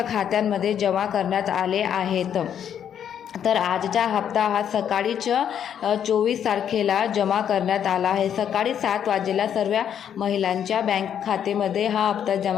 खात्यांमध्ये जमा करण्यात आले आहेत। तर आजचा हप्ता हा सकाळीच 24 तारखेला जमा करण्यात आला आहे। सकाळी 7 वाजेला सर्व महिलांच्या बँक खात्यामध्ये हा हप्ता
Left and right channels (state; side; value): quieter; right; 9.0 dB